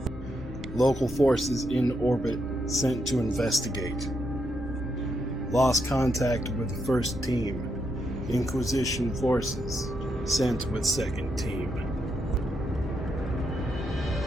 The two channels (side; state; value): both; normal; correlation 0.80